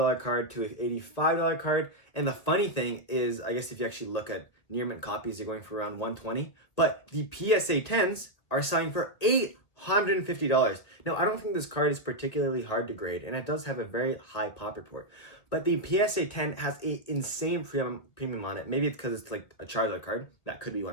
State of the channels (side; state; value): right; late; 1.9 ms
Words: card to an $85 card. And the funny thing is, I guess if you actually look at near mint copies, you're going for around $120. But the PSA 10s are selling for $850. Now, I don't think this card is particularly hard to grade, and it does have a very high pop report. But the PSA 10 has an insane premium on it. Maybe it's because it's like a Charizard card. That could be